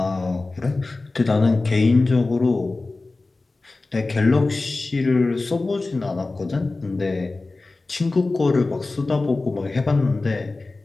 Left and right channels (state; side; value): quieter; right; 3.4 dB